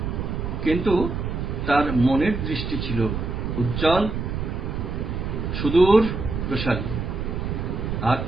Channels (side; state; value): right; noise; rumble, 3 dB below the sound